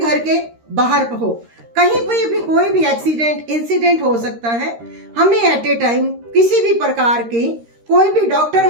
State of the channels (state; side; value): late; left; 13 ms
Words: के बाहर हो। कहीं पर भी कोई भी एक्सीडेंट, इंसिडेंट हो सकता है। हमें एट ए टाइम किसी भी प्रकार की कोई भी डॉक्टर